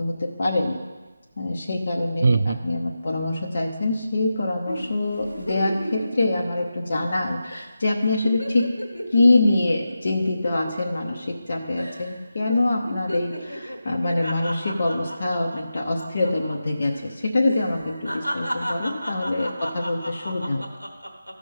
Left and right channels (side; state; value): both; inverted; correlation -0.91